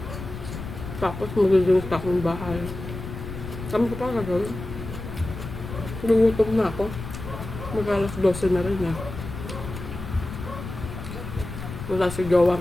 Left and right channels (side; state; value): left; noise; rumble, 9 dB below the sound